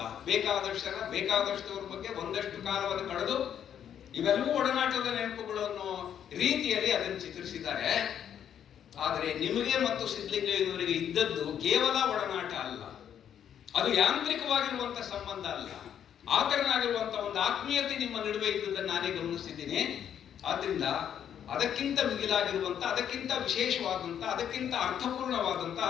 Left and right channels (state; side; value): quieter; right; 9.3 dB